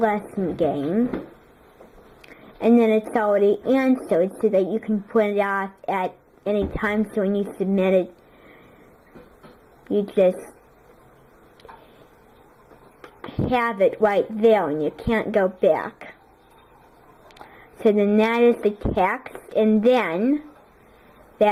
game. And then it's already answered so that you can print it off at any time. So when you submit it, you just have it right there and you can't go back. So then that is the text, and then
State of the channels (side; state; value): both; identical; correlation 1.00